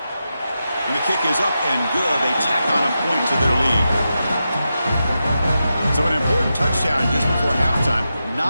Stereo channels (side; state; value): both; inverted; correlation -0.89